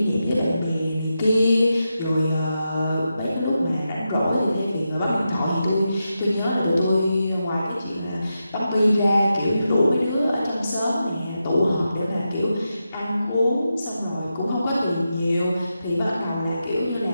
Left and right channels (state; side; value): inverted; both; correlation -0.88